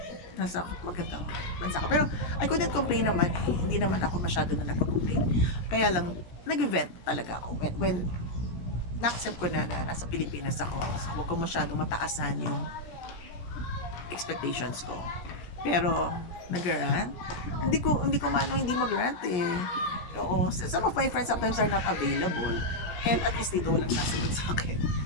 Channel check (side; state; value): right; late; 17 ms